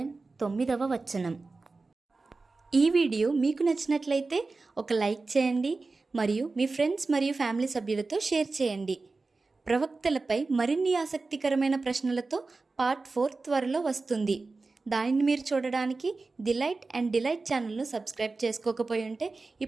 9వ వచనం. ఈ వీడియో మీకు నచ్చినట్లయితే ఒక లైక్ చేయండి మరియు మీ ఫ్రెండ్స్ మరియు ఫ్యామిలీ సభ్యులతో షేర్ చేయండి. ప్రవక్తలపై మరిన్ని ఆసక్తికరమైన ప్రశ్నలతో పార్ట్ 4 త్వరలో వస్తుంది. దానిని మీరు చూడడానికి డిలైట్ అండ్ డిలైట్ ఛానల్ను సబ్స్క్రైబ్ చేసుకోకపోయి ఉంటే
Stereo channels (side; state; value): left; quieter; 3.8 dB